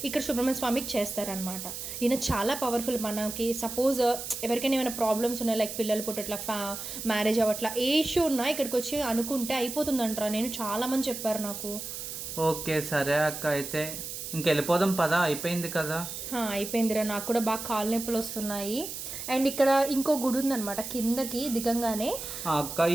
ఇక్కడ సుబ్రహ్మణ్య స్వామికి చేస్తారనమాట. ఈయన చాలా పవర్ఫుల్. మనకి సపోజ్ ఎవరికైనా ఏమైనా ప్రాబ్లమ్స్ ఉన్నాయి, లైక్ పిల్లలు పుట్టట్లా, మ్యారేజ్ అవ్వట్లా, ఏ ఇష్యూ ఉన్నా ఇక్కడికి వచ్చి అనుకుంటే అయిపోతుందంటారా. నేను చాలా మంది చెప్పారు నాకు. ఓకే, సరే అక్క, అయితే ఇంకెళ్ళిపోదాం పదా, అయిపోయింది కదా? అయిపోయిందిరా, నాకు కూడా బాగా కాలు నొప్పులు వస్తున్నాయి. అండ్ ఇక్కడ ఇంకో గుడి ఉందన్నమాట కిందకి దిగంగానే. అక్క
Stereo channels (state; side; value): noise; right; hiss, 7 dB below the sound